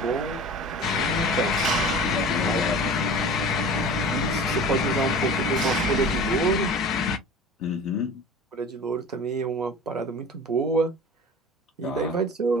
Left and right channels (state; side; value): normal; both; correlation 0.38